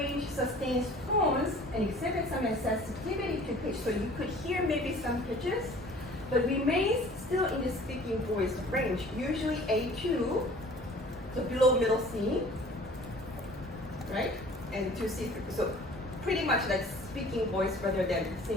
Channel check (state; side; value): normal; both; correlation 0.48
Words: sustains tones and exhibits some sensitivity to pitch. So you could hear maybe some pitches, but remains still in the speaking voice range, usually A2, so below middle C, right? And 2C, so pretty much like speaking voice rather than